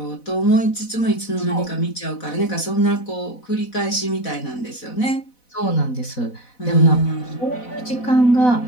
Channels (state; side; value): late; right; 4.0 ms